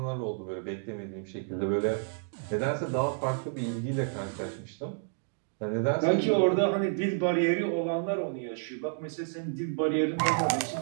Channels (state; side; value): silent; left; digital silence